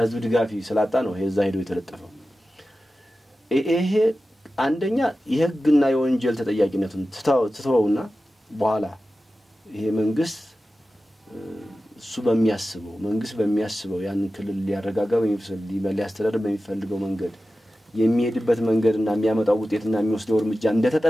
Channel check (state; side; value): normal; both; correlation 0.94